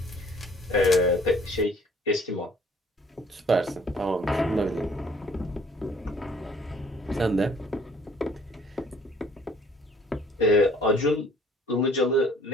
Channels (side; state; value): both; normal; correlation 0.57